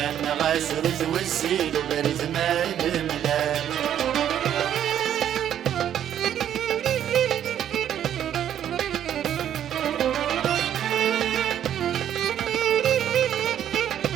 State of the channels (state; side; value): quieter; left; 10.3 dB